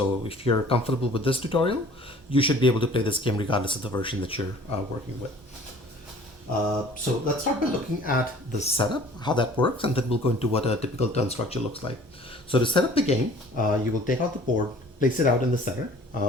if you're comfortable with this tutorial, you should be able to play this game regardless of the version that you're working with. So let's start by looking at the setup, how that works, and then we'll go into what a typical turn structure looks like. So to set up the game, you will take out the board, place it out in the center.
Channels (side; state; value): both; normal; correlation 0.50